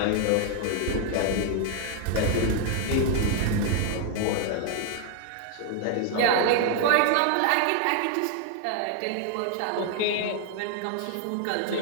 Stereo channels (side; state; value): both; different; correlation 0.00